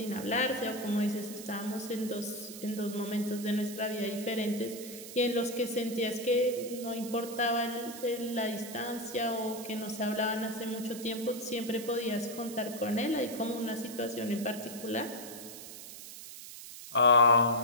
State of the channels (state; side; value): noise; right; hiss, 12 dB below the sound